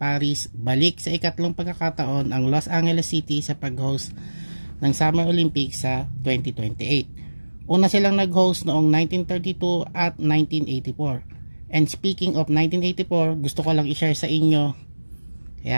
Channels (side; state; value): both; inverted; correlation -1.00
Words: balik sa ikatlong pagkakataon ang Los Angeles City sa pag-host ng Summer Olympics sa 2028. Una silang nag-host noong 1932 at 1984. And speaking of 1984, gusto ko lang i-share sa inyo